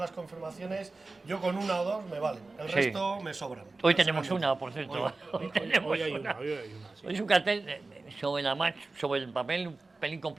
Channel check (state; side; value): quieter; left; 3.5 dB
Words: confirmaciones, yo con una o dos me valen, el Sí. resto me sobran. Hoy tenemos una, por cierto. Hoy tenemos Hoy hay una. una, hoy hay una, sí. Hoy es un cartel sobre el papel un pelín